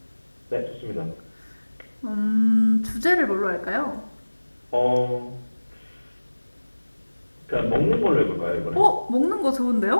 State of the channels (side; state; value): both; inverted; correlation -1.00